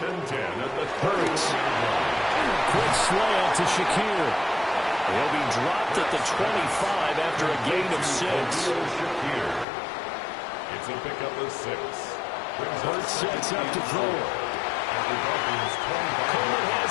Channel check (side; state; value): right; drops out; at 9.7 s